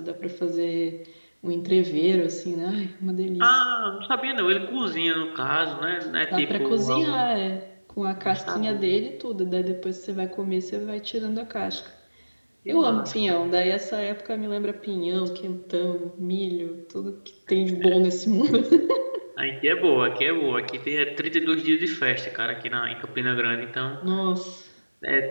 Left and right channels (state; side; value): inverted; both; correlation -1.00